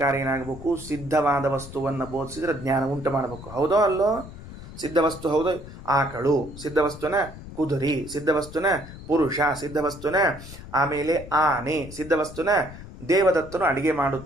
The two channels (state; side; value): noise; left; rumble, 14 dB below the sound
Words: ಏನಾಗಬೇಕು? ಸಿದ್ಧವಾದ ವಸ್ತುವನ್ನು ಬೋಧಿಸಿದ್ರೆ ಜ್ಞಾನ ಉಂಟು ಮಾಡಬೇಕು. ಹೌದೋ ಅಲ್ಲೋ? ಸಿದ್ಧವಸ್ತು ಹೌದು. ಆಕಳು ಸಿದ್ಧವಸ್ತುನ, ಕುದುರೆ ಸಿದ್ಧವಸ್ತುನ, ಪುರುಷ ಸಿದ್ಧವಸ್ತುನ, ಆಮೇಲೆ ಆನೆ ಸಿದ್ಧವಸ್ತುನ, ದೇವದತ್ತನು ಅಡಿಗೆ